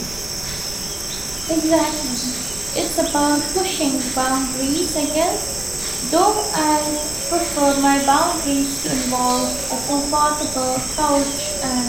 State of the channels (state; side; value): noise; right; rumble, 18 dB below the sound